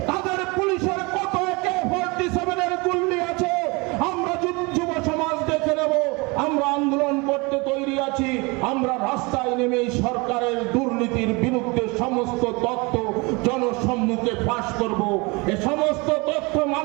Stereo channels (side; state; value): left; quieter; 27.1 dB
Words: তাদের পুলিশের কত AK-47 এর গুলি আছে, আমরা যুব সমাজ দেখে নেব। আমরা আন্দোলন করতে তৈরি আছি। আমরা রাস্তায় নেমে সরকারের দুর্নীতির বিরুদ্ধে সমস্ত তথ্য জনসম্মুখে ফাঁস করব। এই সমস্ত তথ্য